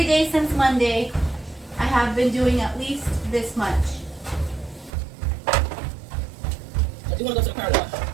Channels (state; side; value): drops out; left; at 4.9 s